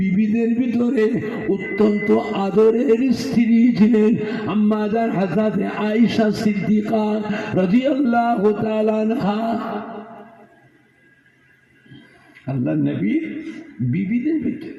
ভিতরে অত্যন্ত আদরের স্ত্রী ছিলেন আম্মা জান হযরত আয়েশা সিদ্দিকা রাদিয়াল্লাহু তাআলা আনহা। আল্লাহ নবী বিবিদের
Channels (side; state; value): both; identical; correlation 1.00